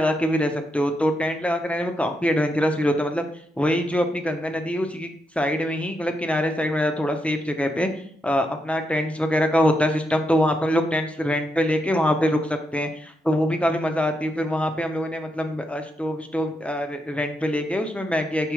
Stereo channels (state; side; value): normal; both; correlation 0.82